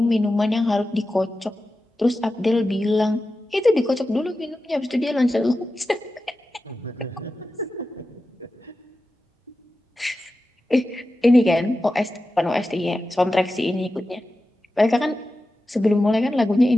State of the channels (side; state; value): both; normal; correlation 0.93